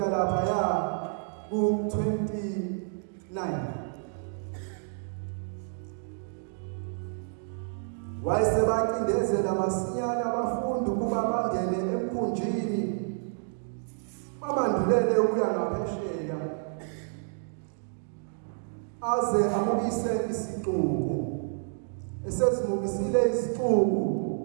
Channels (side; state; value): left; silent; digital silence